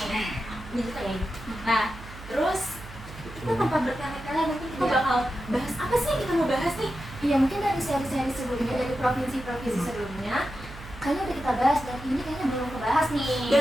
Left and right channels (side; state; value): right; noise; hum, 15 dB below the sound